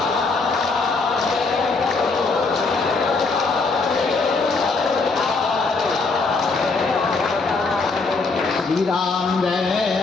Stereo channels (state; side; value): quieter; right; 4.0 dB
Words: श्री राम जय